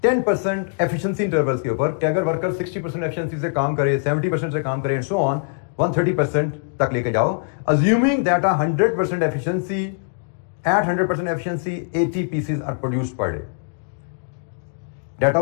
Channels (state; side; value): silent; right; digital silence